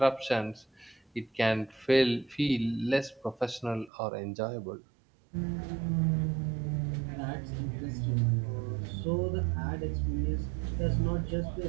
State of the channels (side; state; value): left; drops out; at 3.9 s